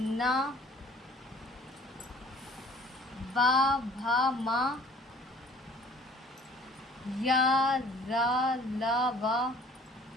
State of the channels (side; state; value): both; normal; correlation 0.52